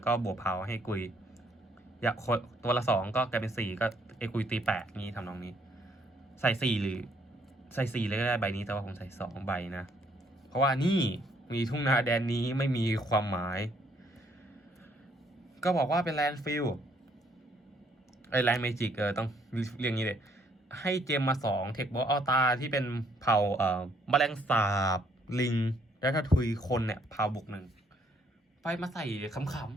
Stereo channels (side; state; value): both; normal; correlation 0.67